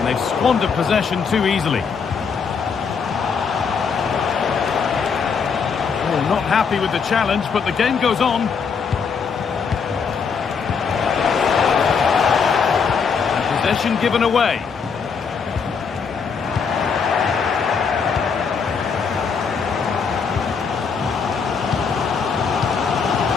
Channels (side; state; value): right; quieter; 5.9 dB